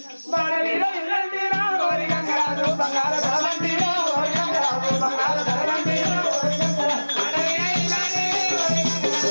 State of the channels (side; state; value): both; inverted; correlation -1.00